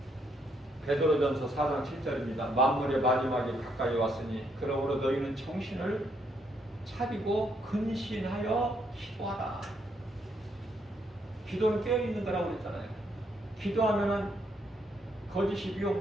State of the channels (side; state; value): both; normal; correlation 0.73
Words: 베드로전서 4장 7절입니다. 만물의 마지막이 가까이 왔으니 그러므로 너희는 정신을 차리고 근신하여 기도하라. 기도는 깨어있는 거라고 그랬잖아요. 기도하면은 거짓이 미혹